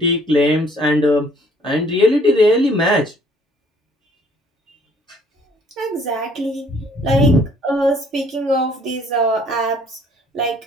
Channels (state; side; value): normal; both; correlation 0.60